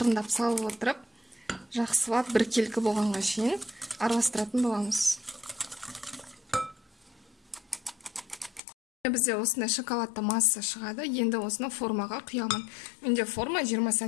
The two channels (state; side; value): drops out; right; at 8.6 s